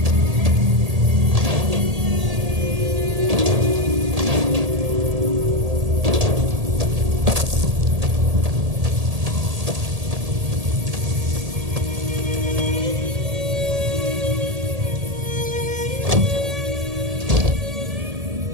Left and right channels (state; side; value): late; left; 1.8 ms